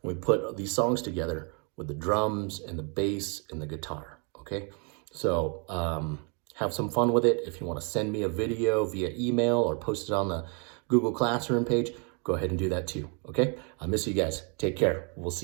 we put these songs together with the drums and the bass and the guitar, okay? So have some fun with it. If you want to send me a video via email or post it on the Google Classroom page, go ahead and do that too, okay? I miss you guys. Take care. We'll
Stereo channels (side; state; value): left; quieter; 36.5 dB